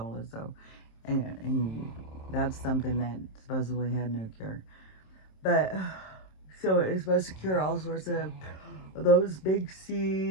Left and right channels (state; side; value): late; right; 27 ms